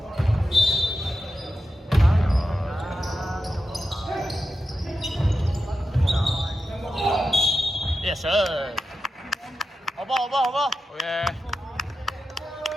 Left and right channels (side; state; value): both; normal; correlation 0.90